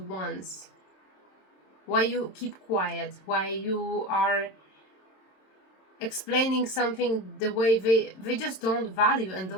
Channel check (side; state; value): right; late; 27 ms